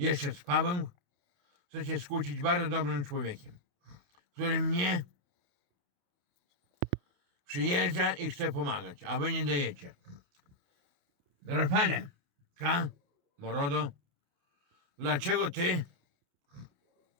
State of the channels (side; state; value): left; late; 28 ms